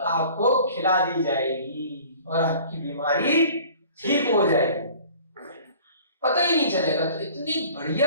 खिला दी जाएगी और आपकी बीमारी ठीक हो जाएगी, पता ही नहीं चलेगा। तो इतनी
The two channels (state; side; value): inverted; both; correlation -0.48